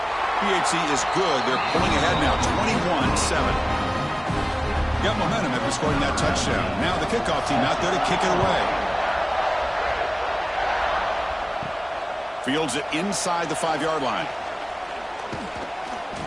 PHC is good. They're pulling ahead now, 21-7. Got momentum after scoring that touchdown. Now the kickoff team out there to kick it away. Fields it inside the 5-yard line.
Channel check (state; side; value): identical; both; correlation 1.00